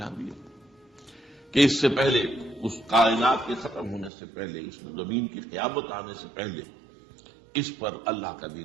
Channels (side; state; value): left; drops out; at 4.1 s